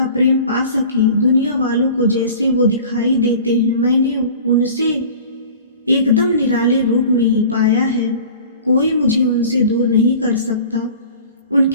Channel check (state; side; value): inverted; both; correlation -0.42